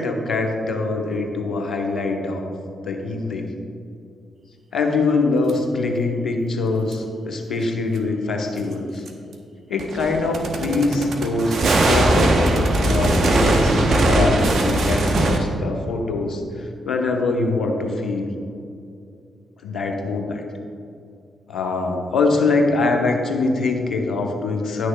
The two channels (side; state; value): both; normal; correlation 0.76